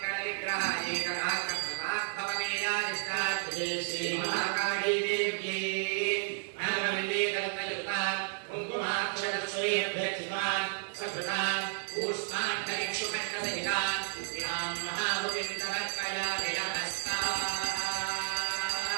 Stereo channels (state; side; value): silent; left; digital silence